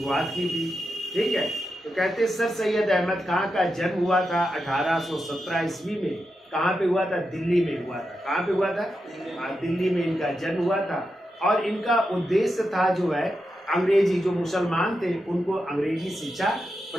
की थी। ठीक है। तो कहते हैं सर सैयद अहमद खान का जन्म हुआ था 1817 ईस्वी में। कहाँ पे हुआ था? दिल्ली में हुआ था। कहाँ पे हुआ था? दिल्ली में इनका जन्म हुआ था। और इनका उद्देश्य था जो है अंग्रेजी, जो मुसलमान थे उनको अंग्रेजी शिक्षा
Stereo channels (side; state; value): both; normal; correlation 0.88